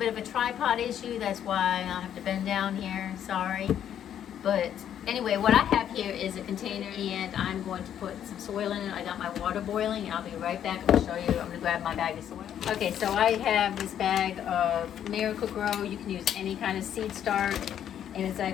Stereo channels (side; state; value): right; quieter; 9.9 dB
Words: of a tripod issue. That's why I'll have to bend down here, sorry. But anyway, what I have here is a container, and I'm going to put some soil in it. I got my water boiling. I'll be right back. I'm gonna show you. I'm gonna grab my bag of soil. Okay, so I have this bag of Miracle-Gro. You can use any kind of seed start, and it's